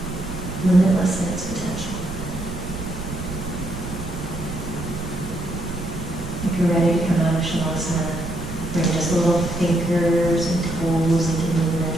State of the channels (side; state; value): right; noise; rumble, 9 dB below the sound